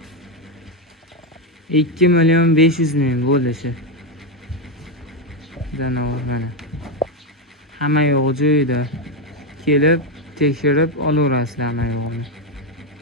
bo'lishi. Janovar mana. Hamma yo'q joyida. Kelib, tekshirib olaverasizlar hamma yo'qni.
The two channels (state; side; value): normal; both; correlation 0.08